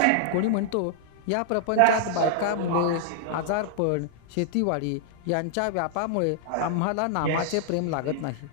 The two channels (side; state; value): both; different; correlation -0.01